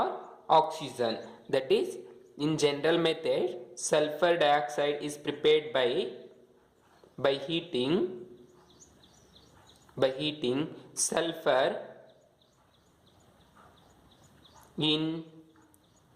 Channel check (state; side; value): identical; both; correlation 1.00